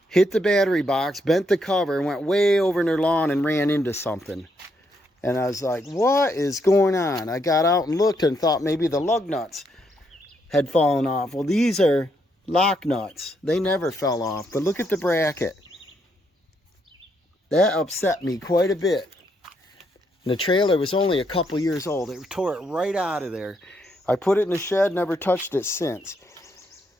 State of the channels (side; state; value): both; normal; correlation 0.76